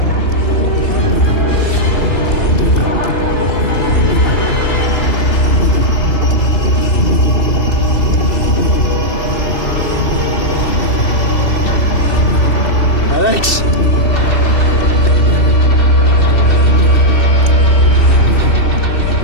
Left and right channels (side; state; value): right; late; 2.7 ms